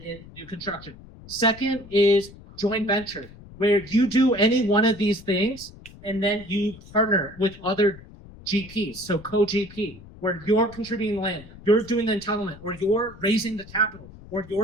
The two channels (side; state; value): left; noise; rumble, 19 dB below the sound